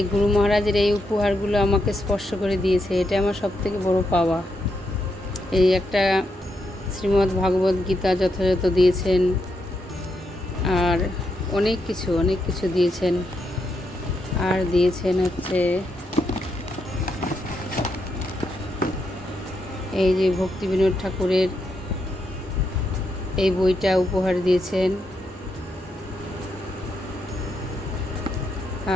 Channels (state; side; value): normal; both; correlation 0.81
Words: গুরু মহারাজের এই উপহারগুলো আমাকে স্পর্শ করে দিয়েছে। এটা আমার সবথেকে বড় পাওয়া। এই একটা শ্রীমদ্ ভাগবত গীতা যথাযথ দিয়েছেন, আর অনেক কিছু দিয়েছেন। আর দিয়েছেন হচ্ছে এই যে ভক্তি বিনোদ ঠাকুরের এই বইটা উপহার দিয়েছেন।